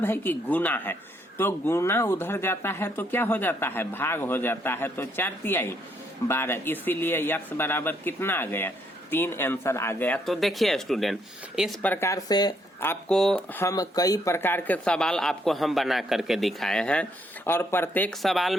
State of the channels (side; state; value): both; normal; correlation 0.72